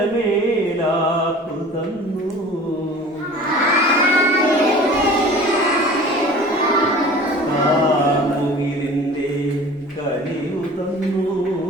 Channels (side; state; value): both; normal; correlation 0.42